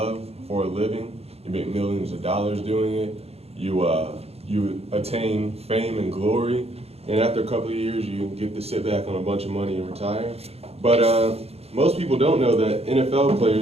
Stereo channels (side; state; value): left; late; 0.29 ms